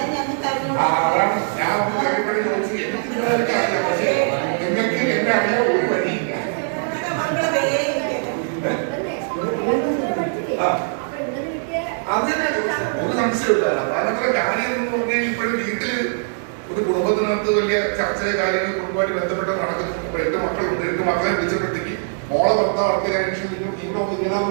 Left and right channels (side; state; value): left; silent; digital silence